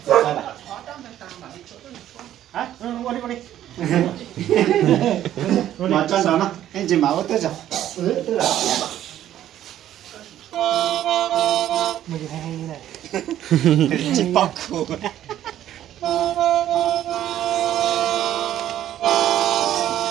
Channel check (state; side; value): quieter; left; 11.9 dB